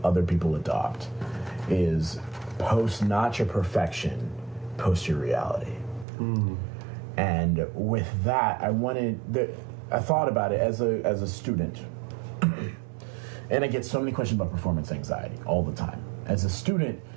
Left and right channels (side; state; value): left; drops out; at 6.1 s